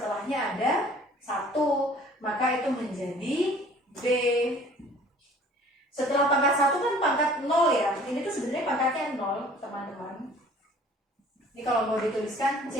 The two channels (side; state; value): both; normal; correlation 0.51